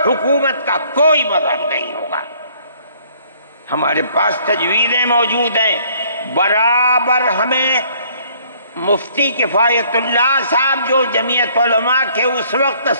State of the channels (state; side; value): inverted; both; correlation -0.61